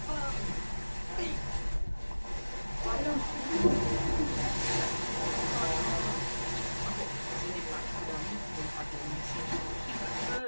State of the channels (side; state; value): both; inverted; correlation -1.00